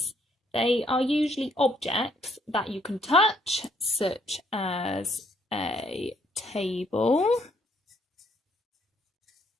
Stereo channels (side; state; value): both; normal; correlation 0.68